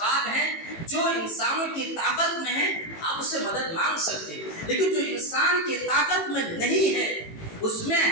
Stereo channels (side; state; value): right; late; 18 ms